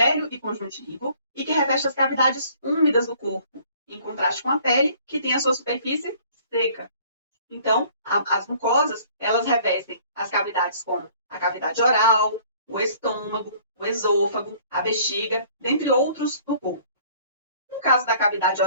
e conjuntivo e que reveste as cavidades úmidas do corpo, em contraste com a pele, que tem a sua superfície seca. Então, as mucosas, elas revestem as cavidades como a cavidade oral, o estômago, o esôfago, a bexiga, dentre outros do corpo. No caso da cavidade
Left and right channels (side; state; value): both; inverted; correlation -0.56